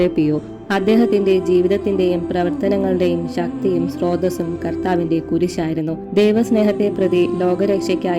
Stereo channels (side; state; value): both; identical; correlation 1.00